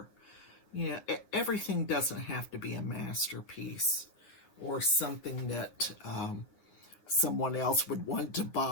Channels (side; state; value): right; late; 9.7 ms